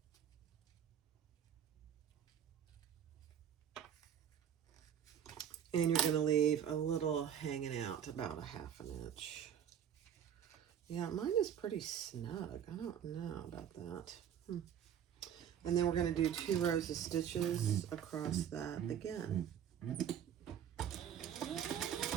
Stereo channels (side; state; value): left; quieter; 9.2 dB